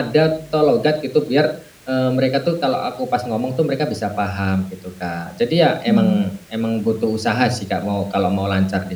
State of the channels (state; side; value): identical; both; correlation 1.00